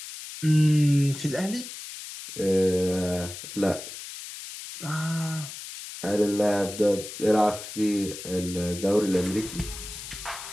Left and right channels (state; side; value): noise; left; hiss, 11 dB below the sound